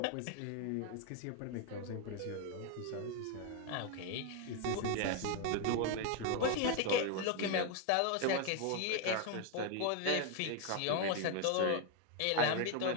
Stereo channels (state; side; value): different; both; correlation 0.01